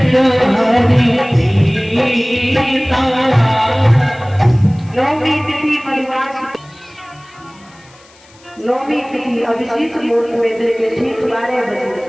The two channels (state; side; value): noise; left; hiss, 27 dB below the sound